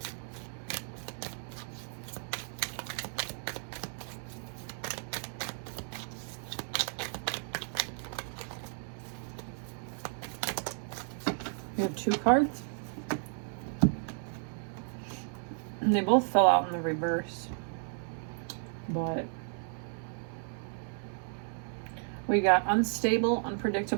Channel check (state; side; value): silent; left; 55 dB below the other